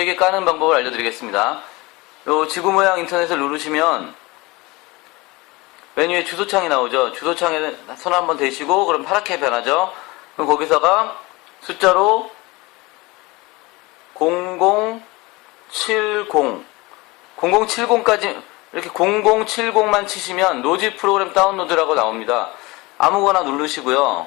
까는 방법을 알려드리겠습니다. 요 지구 모양 인터넷을 누르시면 메뉴에 주소창이 나오죠. 주소창에 손 한번 대시고 그럼 파랗게 변하죠. 그럼 거기서가 숫자로 0070까지 이렇게 0070만 치시면 로지 프로그램 다운로드라고 나옵니다. 아무거나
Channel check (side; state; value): right; quieter; 23.1 dB